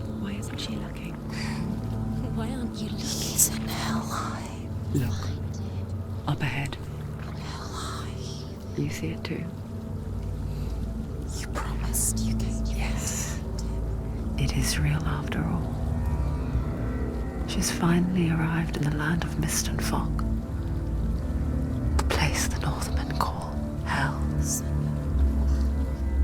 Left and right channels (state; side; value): identical; both; correlation 1.00